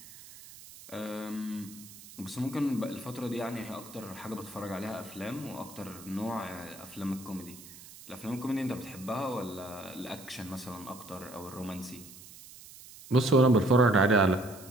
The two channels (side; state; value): right; noise; hiss, 18 dB below the sound